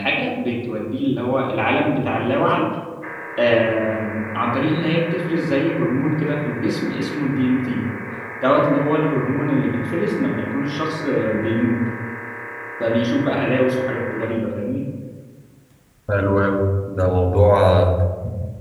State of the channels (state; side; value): identical; both; correlation 1.00